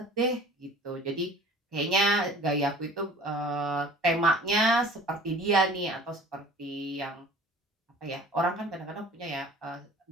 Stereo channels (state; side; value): normal; both; correlation 0.46